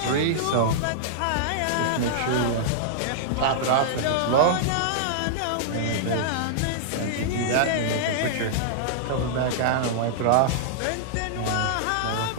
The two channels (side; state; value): both; different; correlation -0.01